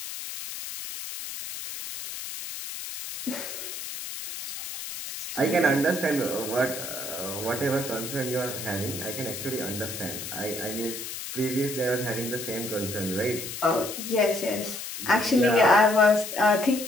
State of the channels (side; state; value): left; noise; hiss, 8 dB below the sound